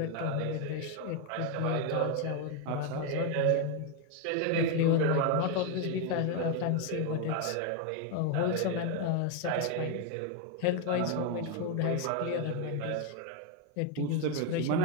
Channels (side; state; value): both; different; correlation 0.02